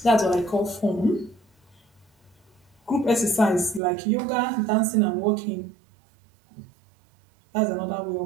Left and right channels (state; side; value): drops out; left; at 3.8 s